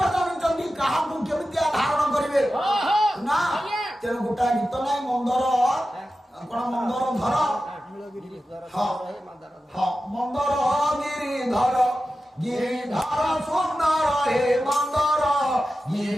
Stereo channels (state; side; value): normal; both; correlation 0.93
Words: ଜାଣିଛନ୍ତି କାହାକୁ କେମିତି ଧାରଣ କରିବେ ନା। ତେଣୁ ଗୋଟାଏ ଗୀତ ନାହିଁ ମନ୍ଦର କଣ ମନ୍ଦର ଧର, ମନ୍ଦର ଗିରିଧର, ଗିରିଧର ସୁନ୍ଦର ହେ ମନ୍ଦର